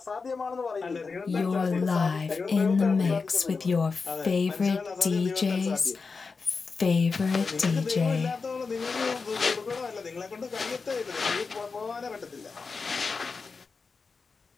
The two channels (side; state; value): right; quieter; 4.6 dB